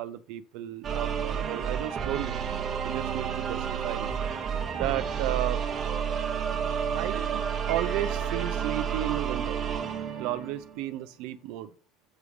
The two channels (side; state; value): left; quieter; 8.5 dB